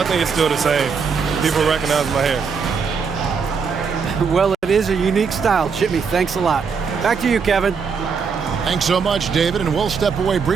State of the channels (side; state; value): left; quieter; 5.7 dB